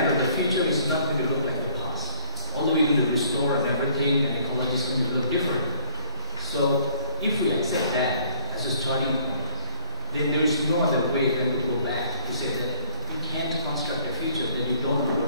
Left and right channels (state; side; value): inverted; both; correlation -0.58